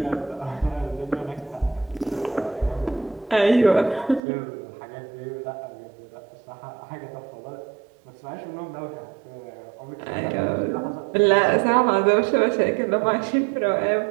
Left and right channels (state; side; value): drops out; left; at 4.2 s